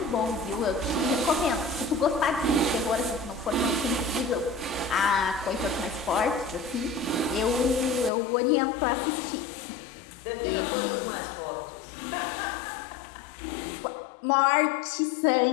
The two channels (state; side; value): drops out; right; at 8.1 s